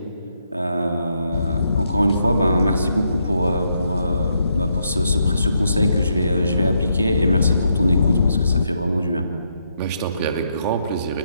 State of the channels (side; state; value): both; inverted; correlation -0.77